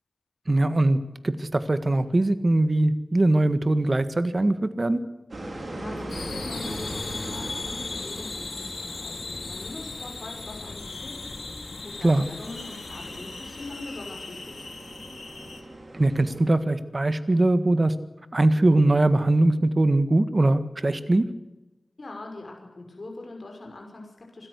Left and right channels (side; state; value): both; normal; correlation 0.98